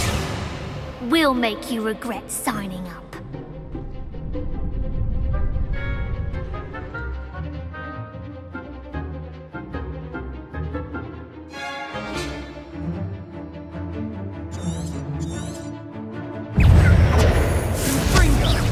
We'll make you regret signing up.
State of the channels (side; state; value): both; identical; correlation 1.00